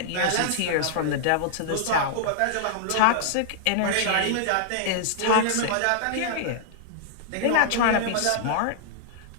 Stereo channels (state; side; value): different; both; correlation -0.01